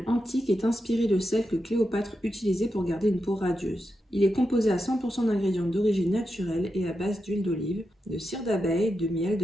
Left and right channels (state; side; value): normal; both; correlation 0.88